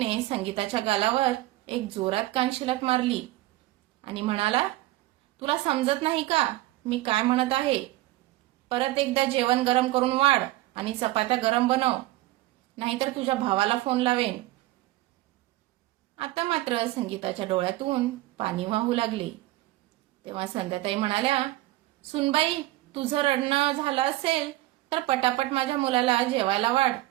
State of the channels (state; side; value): quieter; left; 17.7 dB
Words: संगीताच्या गालावर एक जोरात कानशिलात मारली आणि म्हणाला, तुला समजत नाही का मी काय म्हणत आहे? परत एकदा जेवण गरम करून वाढ आणि चपात्या गरम बनव, नाहीतर तुझ्या भावाला फोन लावेन. आता मात्र संगीताच्या डोळ्यातून पाणी वाहू लागले. तेव्हा संध्याताई म्हणाल्या, सुनबाई, तुझं रडणं झालं असेल तर पटापट माझ्या मुलाला जेवायला वाढ.